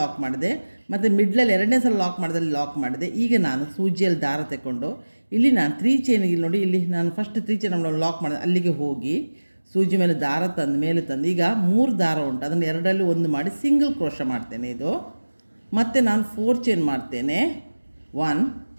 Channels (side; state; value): both; inverted; correlation -1.00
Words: ಮಾಡಿದೆ, ಮತ್ತು ಮಿಡ್ಲಲ್ಲಿ 2ನೇ ಸಲ ಲಾಕ್ ಮಾಡಿದಲ್ಲಿ ಲಾಕ್ ಮಾಡಿದೆ. ಈಗ ನಾನು ಸೂಜಿಯಲ್ಲಿ ದಾರ ತಗೊಂಡು ಇಲ್ಲಿ ನಾನು 3 ಚೈನಿಗೆ ನೋಡಿ, ಇಲ್ಲಿ ನಾನು ಫಸ್ಟ್ 3 ಚೈನ್ ಲಾಕ್ ಮಾಡಿದೆ, ಅಲ್ಲಿಗೆ ಹೋಗಿ ಸೂಜಿ ಮೇಲೆ ದಾರ ತಂದು ಮೇಲೆ ತಂದು ಈಗ 3 ದಾರ ಉಂಟು, ಅದನ್ನು 2ರಲ್ಲಿ 1 ಮಾಡಿ ಸಿಂಗಲ್ ಕ್ರೋಶ ಮಾಡ್ತೇನೆ. ಇದು ಮತ್ತು ನಾನು 4 ಚೈನ್ ಮಾಡ್ತೇನೆ. 1